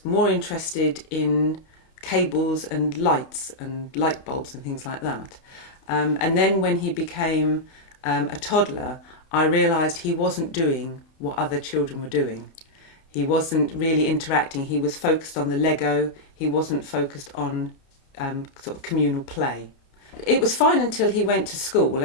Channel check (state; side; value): late; right; 31 ms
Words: more interested in cables and lights and light bulbs and things like that. And then when he became a toddler, I realised he wasn't doing what other children were doing. He wasn't really interacting. He was focused on the Lego. He wasn't focused on sort of communal play. It was fine until he went to school.